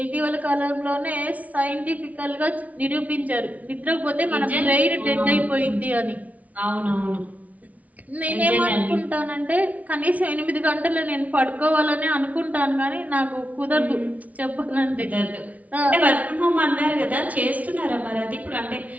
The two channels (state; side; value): late; left; 0.071 ms